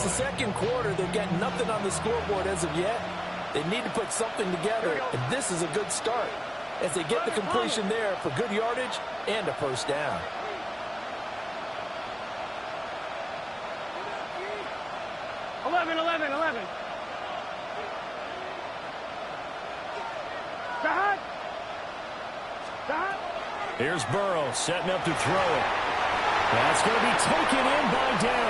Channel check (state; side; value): identical; both; correlation 1.00